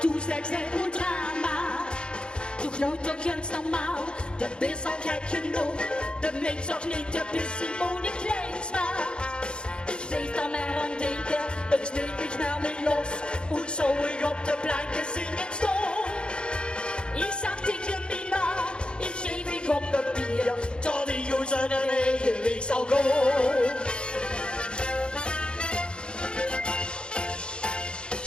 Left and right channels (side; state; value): right; late; 0.053 ms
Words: zijn een drama. Toch nou toch eens normaal, de is al gek genoeg. De mens ook niet, de is Simone Kleinsma. Ik weet dan maar aan denken, het sneeuwt mich naar me los. Und zo ik op de planken zingen stond. Ik zag tegen Mima, ik geef ik op papier, tot die jongens zijn eigen weg zal gaan.